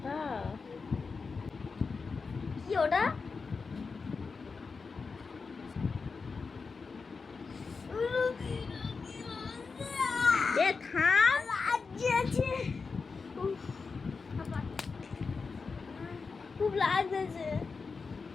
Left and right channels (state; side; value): quieter; right; 4.7 dB